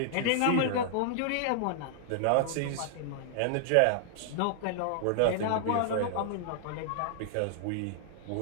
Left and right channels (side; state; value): both; different; correlation -0.01